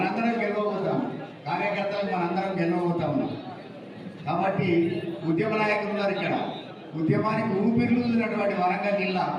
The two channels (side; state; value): both; identical; correlation 1.00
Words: గెలవబోతాం, కార్యకర్తలు మనందరం గెలవబోతా ఉన్నాం. కాబట్టి ఉద్యమ నాయకులు ఉన్నారు ఇక్కడ, ఉద్యమానికి ఊపిరిలున్నటువంటి వరంగల్ జిల్లా.